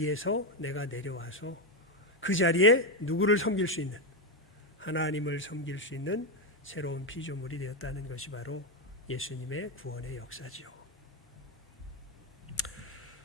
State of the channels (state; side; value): normal; both; correlation 0.07